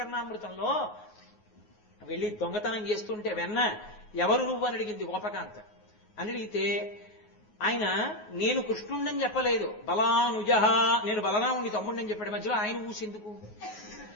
వెళ్ళి దొంగతనం చేస్తుంటే వెన్న ఎవరు నువ్వు అని అడిగింది గోపకాంత. అని అడిగితే ఆయన నేను కృష్ణుండని చెప్పలేదు, బలానుజహ, నేను బలరాముడి తమ్ముడిని చెప్పాడు. మధ్యలో ఆయన ఊసెందుకు?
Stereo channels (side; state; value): right; late; 9.5 ms